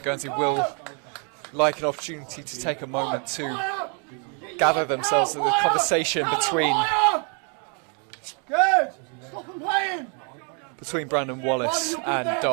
Guernsey will like an opportunity to take a moment to gather themselves in the conversation between Brandon Wallace and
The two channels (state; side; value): quieter; left; 39.0 dB